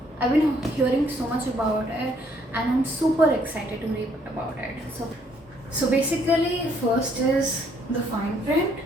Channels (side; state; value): both; normal; correlation 0.67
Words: I've been hearing so much about it, and I'm super excited to read about it. So basically, first is the fine print,